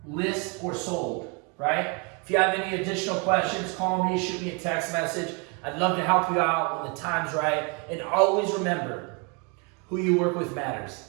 list or sold, right? If you have any additional questions, call me, shoot me a text message. I'd love to help you out when the time's right. And always remember, who you work with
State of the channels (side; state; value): left; quieter; 33.2 dB